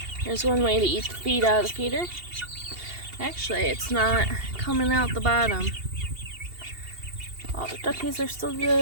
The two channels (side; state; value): left; late; 2.8 ms